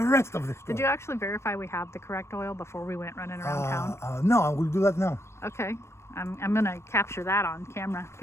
rest of the story. Did you actually verify we have the correct oil before we went running around town? No, I will do that now. Okay. I'm gonna capture that on camera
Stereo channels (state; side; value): late; right; 0.13 ms